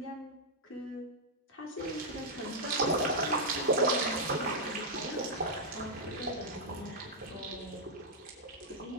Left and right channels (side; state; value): both; normal; correlation -0.06